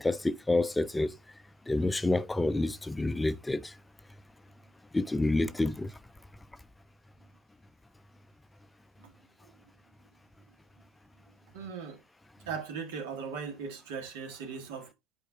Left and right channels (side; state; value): both; normal; correlation 0.90